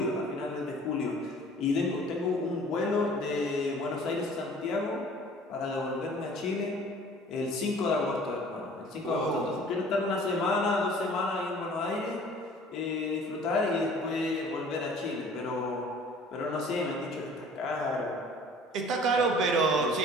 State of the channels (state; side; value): normal; both; correlation 0.49